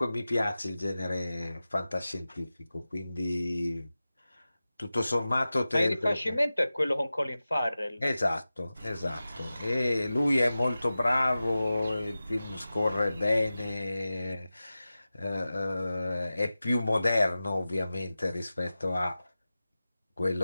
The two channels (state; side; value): inverted; both; correlation -0.95